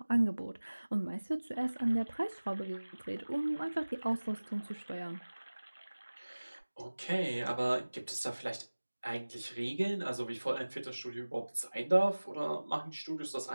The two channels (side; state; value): both; inverted; correlation -1.00